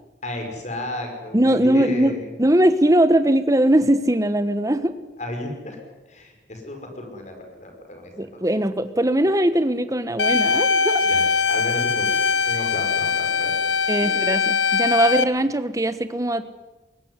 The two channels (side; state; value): both; normal; correlation 0.41